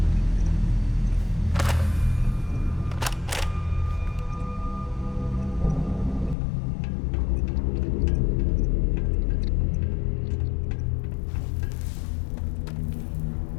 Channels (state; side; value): drops out; right; at 6.4 s